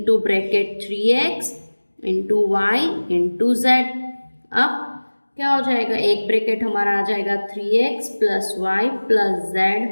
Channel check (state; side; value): inverted; both; correlation -1.00